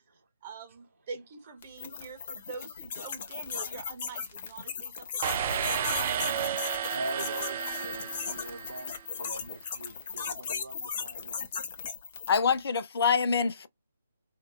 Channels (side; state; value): both; inverted; correlation -0.54